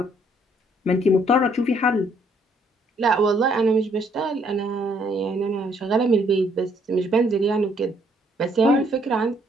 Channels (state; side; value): normal; both; correlation 0.67